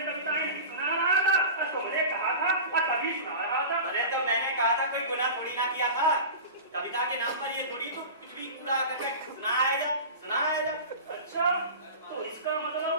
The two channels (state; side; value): inverted; both; correlation -0.32